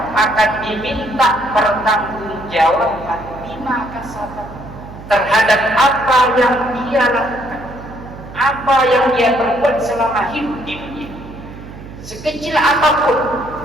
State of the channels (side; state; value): right; noise; hum, 15 dB below the sound